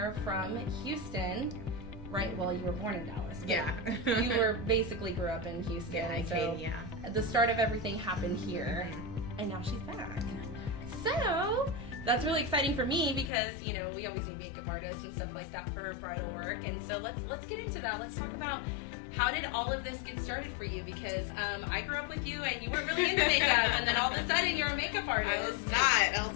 from Houston. Right, well, you were born in Dallas. Yeah. You were basically grew up in Houston. Yeah, I so came, the start of everything happened here, and now she's back. So that's really exciting for me because, you know, we always need makeup artists and stuff like that for bridal work. And so let's get into that. Let's talk about how did all of this get started for you? Because I grew up with you and you weren't really into makeup, and then all of a sudden you're a makeup artist. I was not. I was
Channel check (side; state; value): right; drops out; at 13.3 s